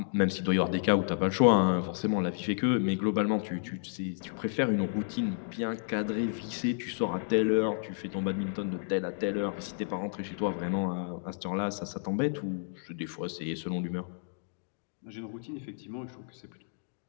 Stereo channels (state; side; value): silent; right; digital silence